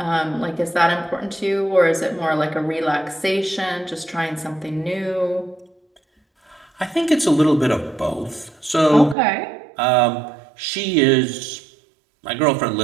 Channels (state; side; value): drops out; left; at 9.2 s